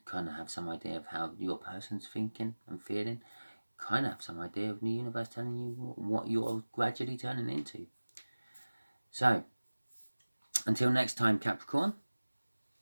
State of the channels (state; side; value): inverted; both; correlation -1.00